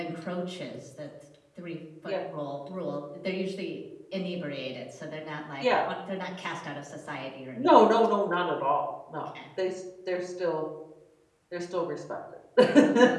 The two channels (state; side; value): identical; both; correlation 1.00